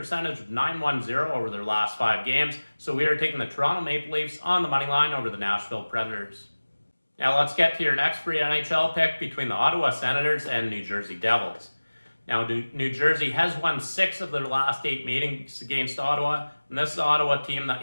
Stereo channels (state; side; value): inverted; both; correlation -1.00